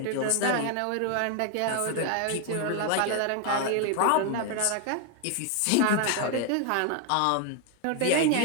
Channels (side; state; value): both; different; correlation 0.01